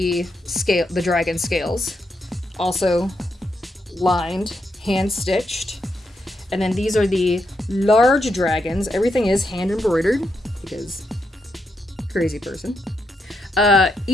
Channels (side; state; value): both; normal; correlation 0.82